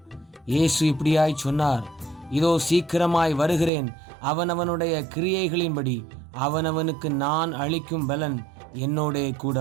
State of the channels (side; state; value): left; drops out; at 3.7 s